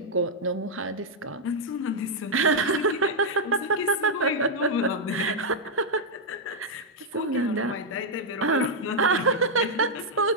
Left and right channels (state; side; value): normal; both; correlation -0.04